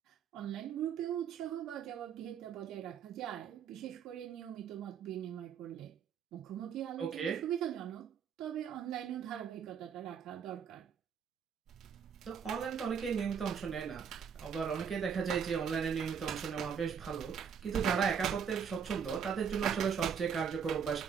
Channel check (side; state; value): left; quieter; 7.2 dB